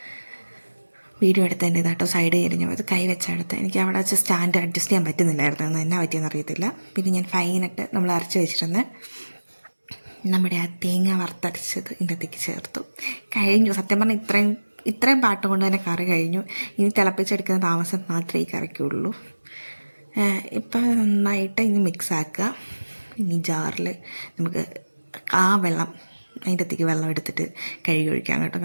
വീഡിയോ എടുത്തതിൻ്റെ ഇതാട്ടോ സൈഡ് കഴിഞ്ഞു അത് കൈ വെച്ചെടുത്ത്. എനിക്ക് അവിടെ വെച്ച് സ്റ്റാൻഡ് അഡ്ജസ്റ്റ് ചെയ്യാൻ പറ്റുന്നില്ലായിരുന്നു, എന്നാ പറ്റിയെന്ന് അറിയത്തില്ല. പിന്നെ ഞാൻ ഫൈനിട്ട് നമ്മൾ അരച്ച് വെച്ചിരുന്ന നമ്മുടെ ആ തേങ്ങ വറുത്തരച്ചത് ഇതിൻ്റെ അകത്തേക്ക് ചേർത്തു. കഴിഞ്ഞു. സത്യം പറഞ്ഞാൽ ഇത്രയും പാട്ട് കൊണ്ട് തന്നെ കറി കഴിഞ്ഞു. ഇനി തിളപ്പിച്ചെടുക്കുന്ന താമസം മാത്രമേ ഈ കറിക്കുള്ളൂ. ഇപ്പം നന്നായിട്ട് ഇനി മിക്സാക്കുക. ഇനി ജാറിൽ നമുക്ക് ആ വെള്ളം അതിൻ്റെ അകത്തേക്ക് വെള്ളം എടുത്തിട്ട് കഴുകി ഒഴിക്കാം കേട്ടോ.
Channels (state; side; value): inverted; both; correlation -1.00